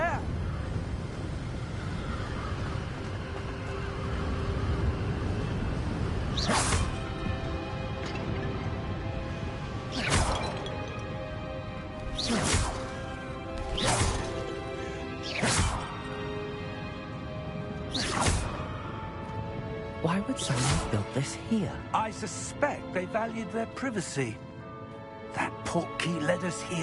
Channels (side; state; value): both; identical; correlation 1.00